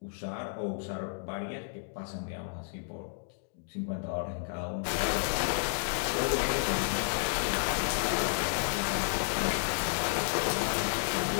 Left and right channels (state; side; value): silent; right; digital silence